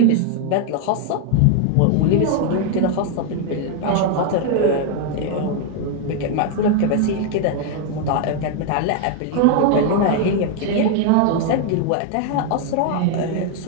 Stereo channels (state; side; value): different; both; correlation 0.00